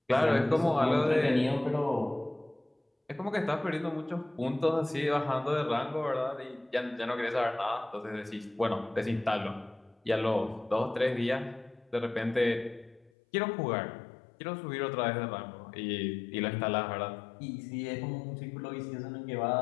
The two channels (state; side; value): drops out; right; at 13.1 s